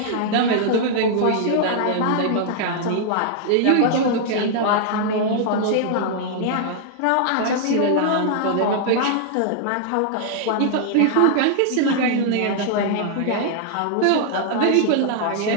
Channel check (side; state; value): both; different; correlation -0.01